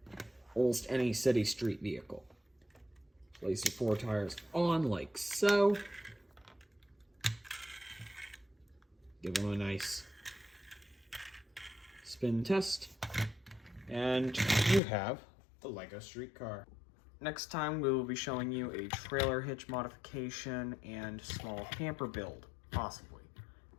almost any city street vehicle. Place your 4 tires on like so. Give them a nice spin test. And you have the Lego streetcar. Next time we will be showing you a trailer hitch modification and small camper build, possibly.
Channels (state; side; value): drops out; right; at 14.8 s